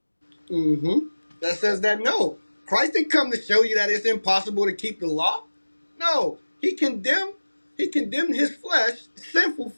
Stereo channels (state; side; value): inverted; both; correlation -1.00